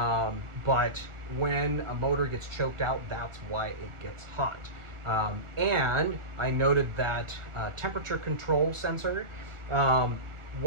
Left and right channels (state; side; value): late; left; 1.4 ms